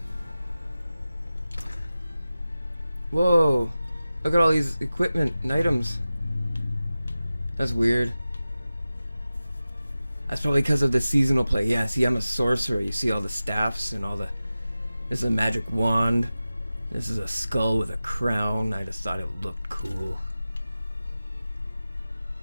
Whoa, look at all these equipment and items. That's weird. That's probably because of the seasonal play. Yeah, see, I'm a sorcerer. You see all the staffs and all the... This is a magic wand. This is a skull with a crown. I just thought it looked cool.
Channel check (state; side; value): inverted; both; correlation -0.95